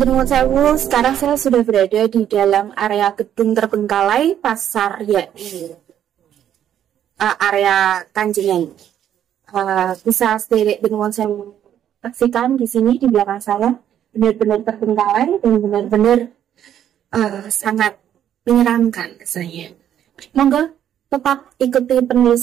Sewu, sekarang saya sudah berada di dalam area gedung terbengkalai Pasar YAI, area Kanjengan. Bisa sederek Nuwun Sewu saksikan di sini di belakang saya benar-benar terbengkalai dan benar-benar sangat menyeramkan rasanya. Monggo tetap ikuti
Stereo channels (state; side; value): quieter; left; 10.3 dB